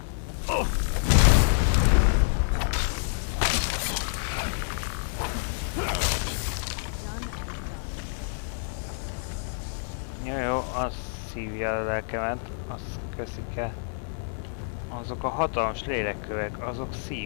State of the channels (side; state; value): right; silent; 60 dB below the other